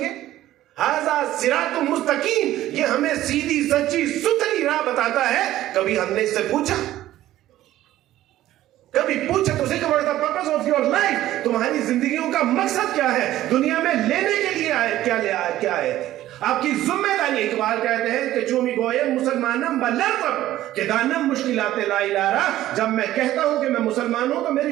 ھذا صراط مستقیم، یہ ہمیں سیدھی سچی ستھری راہ بتاتا ہے؟ کبھی ہم نے اس سے پوچھا تو سے کہ what is the purpose of your life, تمہاری زندگیوں کا مقصد کیا ہے؟ دنیا میں لینے کے لیے کیا آئے تھے؟ آپ کی ذمہ داری۔ اقبال کہتے ہیں کہ چومی گوئے مسلمانم بلرزم کہ دانم مشکلات لا الہ، جب میں کہتا ہوں کہ میں مسلمان ہوں تو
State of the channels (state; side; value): quieter; left; 14.2 dB